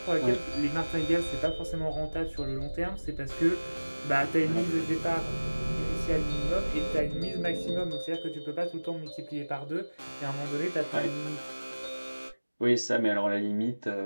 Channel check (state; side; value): inverted; both; correlation -1.00